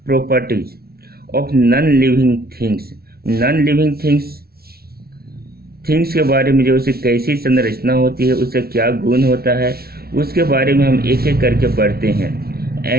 properties of non living things के बारे में, जो उसे कैसी संरचना होती है, उससे क्या गुण होता है, उसके बारे में हम एक एक करके पढ़ते हैं।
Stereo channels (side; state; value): left; late; 0.44 ms